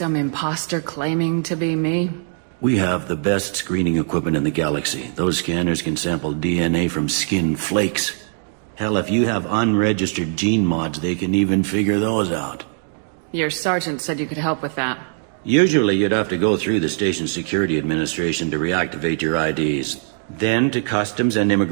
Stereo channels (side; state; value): left; silent; 65 dB below the other